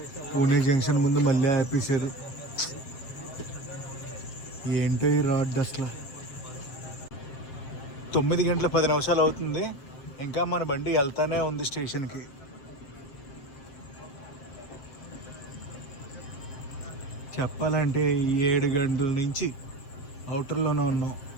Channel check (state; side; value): late; right; 7.6 ms